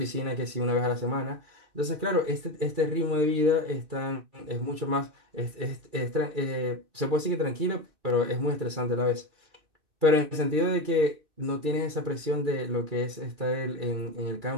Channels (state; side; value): late; left; 2.4 ms